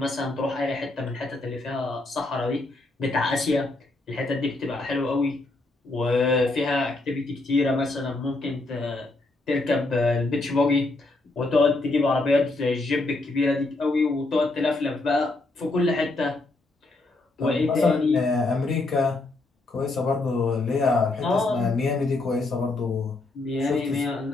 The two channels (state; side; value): quieter; right; 3.1 dB